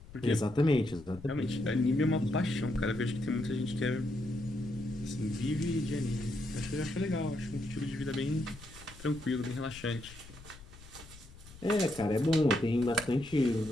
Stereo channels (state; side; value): noise; left; rumble, 18 dB below the sound